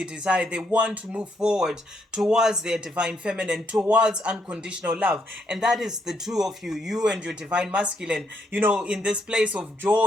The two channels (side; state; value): both; normal; correlation 0.75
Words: desire. They want to move forward towards their Divine Feminine, towards unconditional love. And that is the 2 of you, you and your Divine Masculine, in this place of